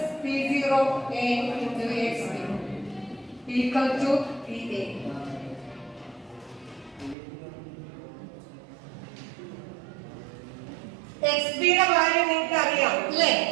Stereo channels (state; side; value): drops out; left; at 7.2 s